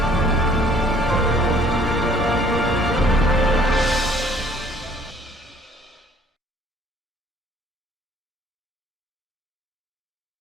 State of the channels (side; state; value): both; normal; correlation 0.59